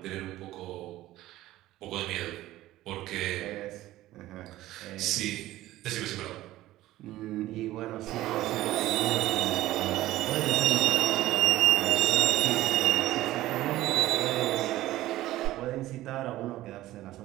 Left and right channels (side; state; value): left; quieter; 15.8 dB